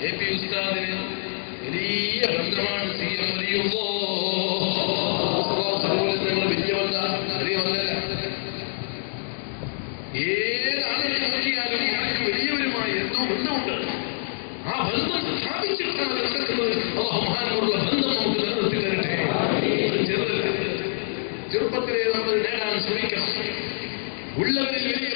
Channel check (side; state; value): right; silent; digital silence